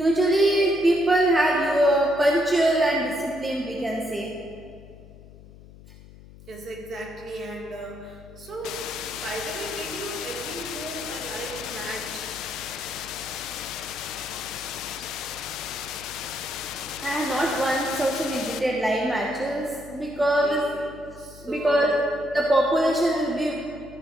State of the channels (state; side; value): noise; left; hum, 20 dB below the sound